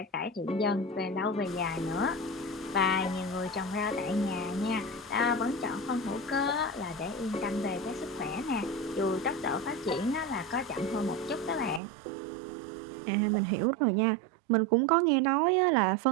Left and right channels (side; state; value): left; drops out; at 11.8 s